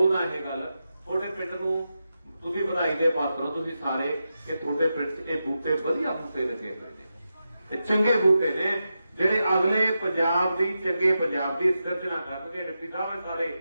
ਇਹ ਗੱਲ ਤੁਹਾਡੇ ਪਿੰਡ ਨੂੰ ਤੁਸੀਂ ਵਧਾਈ ਦੇ ਪਾਤਰ ਹੋ ਤੁਸੀਂ ਸਾਰੇ ਕਿ ਤੁਹਾਡੇ ਪਿੰਡ 'ਚ ਇਹ ਬੂਟੇ ਵਧੀਆ ਬੂਟੇ ਲੱਗੇ ਹੋਏ ਨੇ ਇਹ ਚੰਗੇ ਬੂਟੇ ਨੇ ਜਿਹੜੇ ਅਗਲੇ ਪੰਜਾਬ ਦੀ ਚੰਗੇ ਪੰਜਾਬ ਦੀ ਸਿਰਜਣਾ ਕਰਨਗੇ। ਡਿਪਟੀ ਸਾਹਿਬ ਸਾਰੇ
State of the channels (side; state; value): both; inverted; correlation -0.89